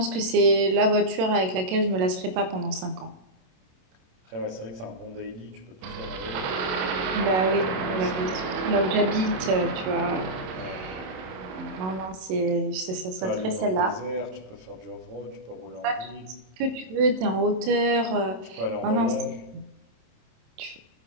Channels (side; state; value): left; late; 27 ms